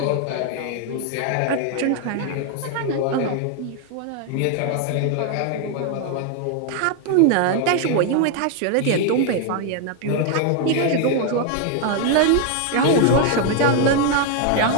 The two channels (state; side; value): different; both; correlation 0.00